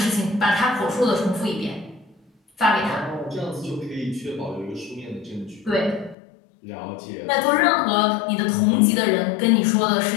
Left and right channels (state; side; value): drops out; right; at 6.2 s